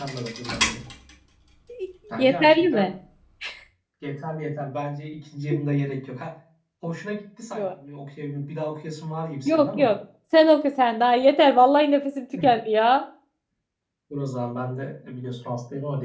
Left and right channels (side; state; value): both; identical; correlation 1.00